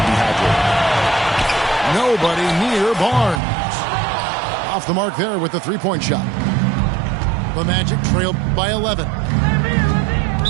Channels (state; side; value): drops out; left; at 3.4 s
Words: be hydrated. Nobody near Barnes. Off the mark there with the 3-point shot. The Magic trailed by 11.